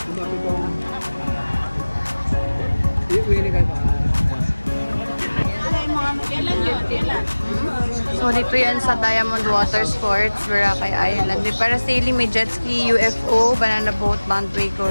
So, dito yan sa Diamond Water Sports, Boracay Island. May parasailing, may jet ski, UFO, banana boat,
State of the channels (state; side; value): inverted; both; correlation -1.00